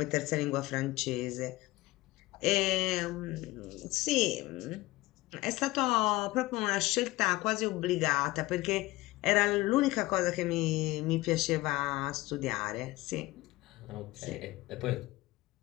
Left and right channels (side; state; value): right; quieter; 19.4 dB